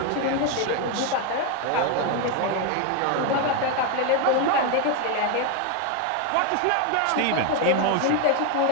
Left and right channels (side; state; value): both; different; correlation 0.01